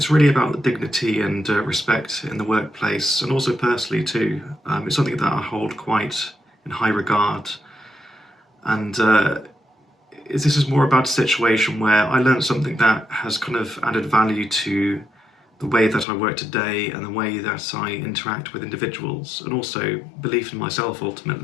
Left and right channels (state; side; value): drops out; right; at 16.1 s